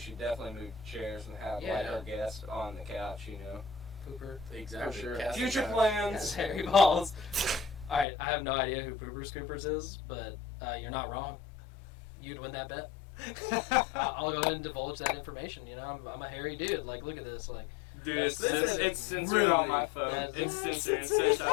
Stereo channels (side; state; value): right; drops out; at 8.1 s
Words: definitely move chairs and have like Yeah. our guests on the couch. Pooper. Exactly. For sure. Casting Future couch. Yes, plans. hairy balls. Alright, I have no idea who Pooper Scoopers is, but you're not wrong. You'd win that bet. I'll go ahead and divulge that information. I'm a hairy dude. Like, look at this. Like, Dude, it's censored really- on my phone. that's- It's censored. It says,